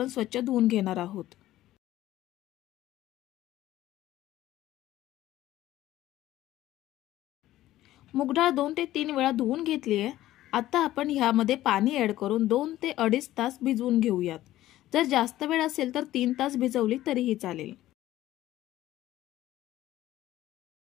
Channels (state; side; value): quieter; right; 14.7 dB